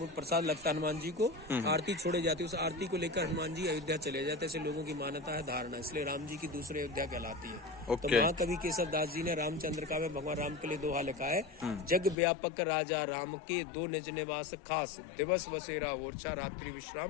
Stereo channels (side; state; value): right; drops out; at 12.2 s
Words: प्रसाद लगता हनुमान जी को। आरती छोड़े जाती है, उस आरती को लेकर हनुमान जी अयोध्या चले जाते, ऐसे लोगों की मान्यता है, धारणा, इसलिए राम जी की दूसरी अयोध्या कहलाती है। तो महाकवि केशव दास जी ने रामचंद्र का में भगवान राम के लिए दोहा लिखा है, जग व्यापक राजा राम के 2 निज निवास खास, दिवस बसेरा ओरछा, रात्रि